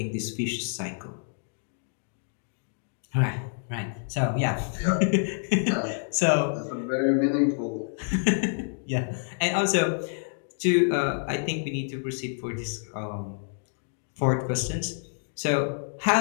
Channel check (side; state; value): right; silent; digital silence